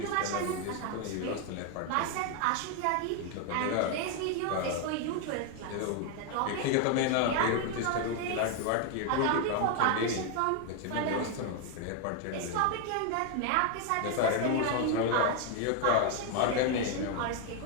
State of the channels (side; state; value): both; different; correlation 0.01